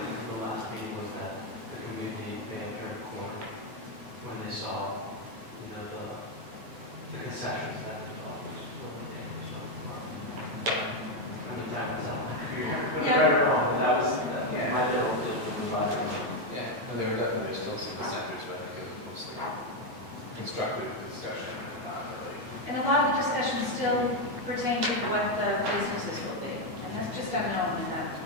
from the last meeting was that the community may have turned a corner when they saw, the concessions that the developers were doing. I mean, that was Yeah. right or wrong, but that was Yeah. my little deal with the vibe. Yeah, no, there's still some dissenters, but I think it was mostly constructive discussion, not really. And a lot of the discussion still pertained to what the businesses will be, and that's just unknown, and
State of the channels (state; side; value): late; left; 8.6 ms